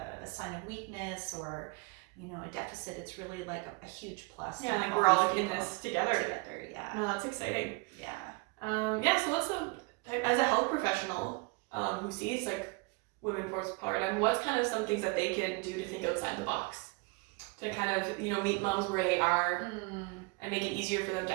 a sign of weakness or, a deficit. It's really like a huge plus. Yeah, we're all in this together. Yeah. No, that's exciting. Yeah. So what's as a health professional who sees like women postpartum, what's kind of some things that they can do to think outside the box to kind of, meet moms where they are and make it easier for them to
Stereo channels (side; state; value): left; quieter; 29.1 dB